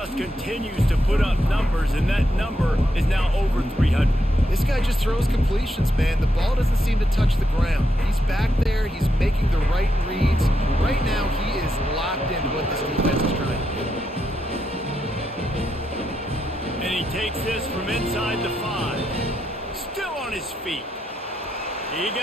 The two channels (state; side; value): normal; both; correlation 0.82